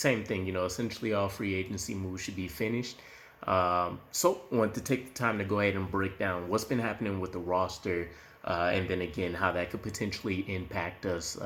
thing, essentially all free agency moves should be finished. So I want to take the time to go ahead and break down what's been happening with the roster, and then again how that could potentially impact us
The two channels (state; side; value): identical; both; correlation 1.00